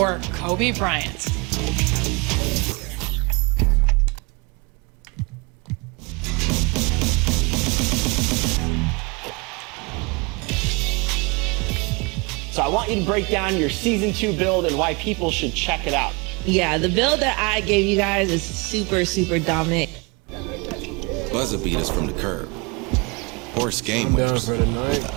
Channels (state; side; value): quieter; left; 29.0 dB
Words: Kobe Bryant? So I want you to break down your Season 2 build and why people should check it out. Yeah, the build that I gave you guys is super, super dominant. Buzzer beaters from the curb. Horse game winners with